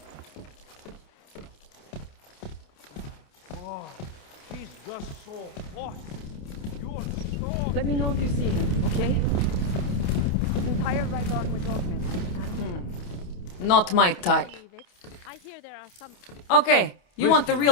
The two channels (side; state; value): right; late; 28 ms